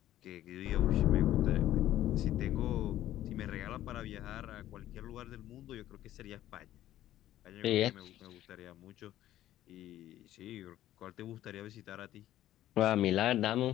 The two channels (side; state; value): right; quieter; 13.3 dB